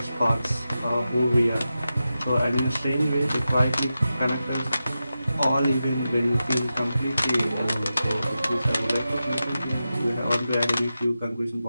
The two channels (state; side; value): inverted; both; correlation -0.91